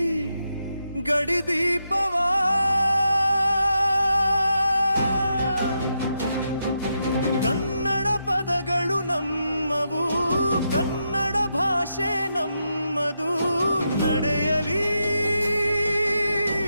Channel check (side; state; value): both; inverted; correlation -0.84